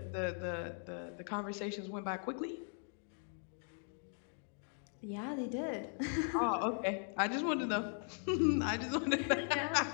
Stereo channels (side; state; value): right; silent; 52 dB below the other